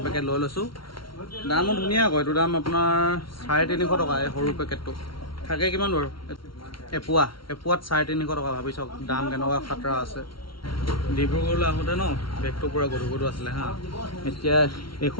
পেকেট লৈ লৈছোঁ দামো ধুনীয়া আকৌ এইটো দাম আপোনাৰ 350 টকা এই সৰু পেকেটটো থাকে কিমান বাৰু এপোৱাত 350 টকা ভাবি চাওক দাম কেনেকুৱা খাতৰা আছে ডিব্ৰুগড়লৈ আহোঁতে ন বেগটো পূৰা গধুৰ আছিলে হা এতিয়া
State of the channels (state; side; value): late; right; 0.74 ms